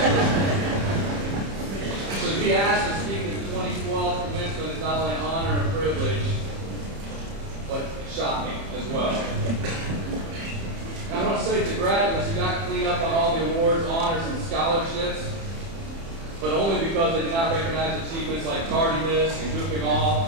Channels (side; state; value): left; late; 30 ms